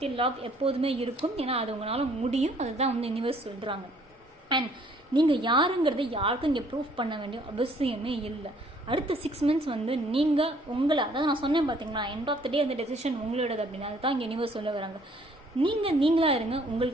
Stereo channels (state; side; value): normal; both; correlation 0.61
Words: லவ் எப்போதுமே இருக்கும். ஏன்னா அது உங்களால் முடியும். அதுதான் வந்து யூனிவர்ஸ் சொல்கிறாங்க. அண்ட் நீங்கள் யாருங்கிறத யாருக்கும் இங்கே ப்ரூஃப் பண்ண வேண்டிய அவசியமே இல்லை. அடுத்த 6 months வந்து நீங்கள் உங்களை, அதாவது நான் சொன்னேன் பார்த்தீங்களா, எண்ட் ஆஃப் த டே அந்த டெசிஷன் உங்களோடது அப்படின்னு. அதுதான் இங்கே யூனிவர்ஸ் சொல்ல வராங்க. நீங்களாக இருங்க,